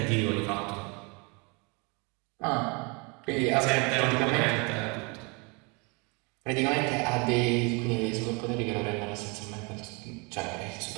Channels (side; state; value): left; quieter; 30.3 dB